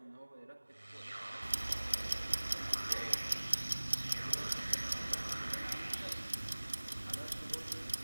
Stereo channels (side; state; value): both; inverted; correlation -1.00